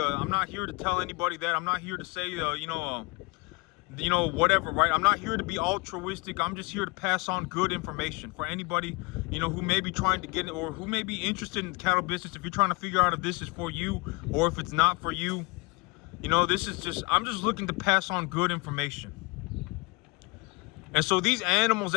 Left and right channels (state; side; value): quieter; right; 26.1 dB